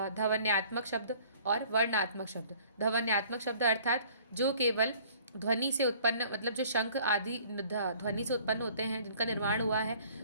शब्द और वर्णात्मक शब्द। ध्वन्यात्मक शब्द अर्थात जो केवल ध्वनि से उत्पन्न, मतलब जो शंख आदि ध्वनि से उत्पन्न होते हैं, जिनका निर्माण हुआ है,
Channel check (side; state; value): both; inverted; correlation -0.53